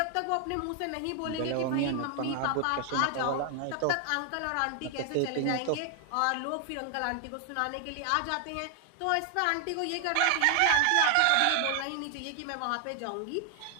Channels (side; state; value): both; different; correlation 0.00